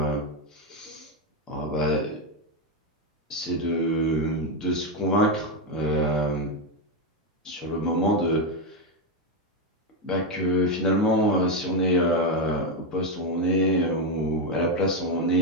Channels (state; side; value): normal; both; correlation 0.06